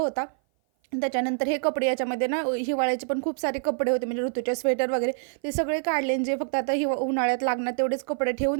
त्याच्यानंतर हे कपडे याच्यामध्ये ना हिवाळ्याचे पण खूप सारे कपडे होते म्हणजे ऋतूचे स्वेटर वगैरे ते सगळे काढले जे फक्त आता उन्हाळ्यात लागणार तेवढेच कपडे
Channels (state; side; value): silent; left; 56 dB below the other